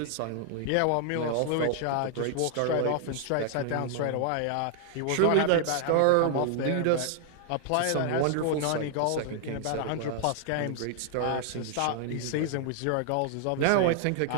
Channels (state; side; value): different; both; correlation 0.00